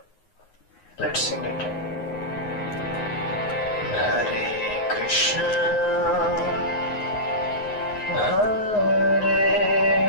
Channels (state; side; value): late; right; 9.5 ms